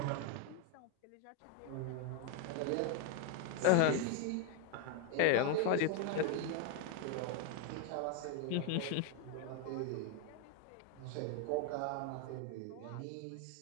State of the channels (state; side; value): different; both; correlation 0.01